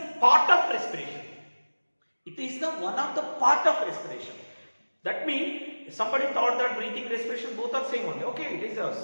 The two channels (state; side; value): inverted; both; correlation -1.00